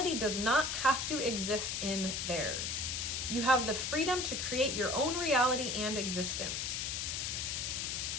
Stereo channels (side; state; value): left; noise; hiss, 1 dB below the sound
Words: does not have to exist in theirs. You have the freedom to create your own reality and existence.